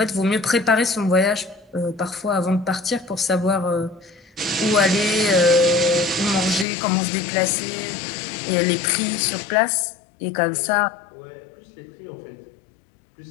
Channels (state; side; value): drops out; right; at 6.7 s